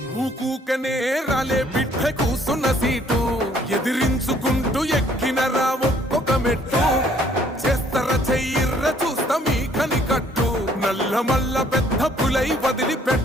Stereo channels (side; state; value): both; normal; correlation 0.62